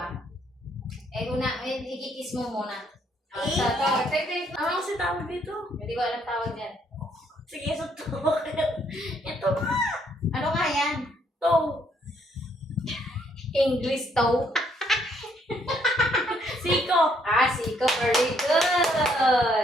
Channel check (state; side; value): normal; both; correlation 0.69